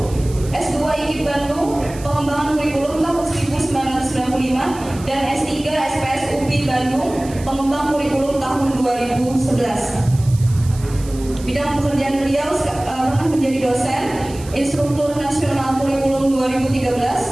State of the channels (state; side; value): noise; right; hiss, 18 dB below the sound